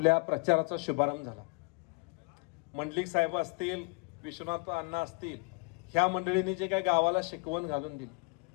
प्रचाराचा शुभारंभ झाला. मंडलिक साहेब असतील, विश्वनाथ अण्णा असतील, ह्या मंडळींनी जे काही गावाला शिकवण घालून दिली.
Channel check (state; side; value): quieter; right; 30.3 dB